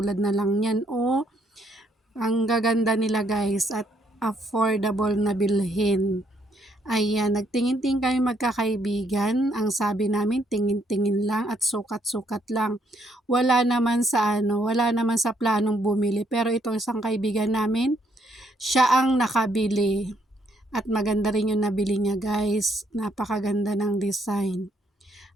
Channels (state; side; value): normal; both; correlation 0.71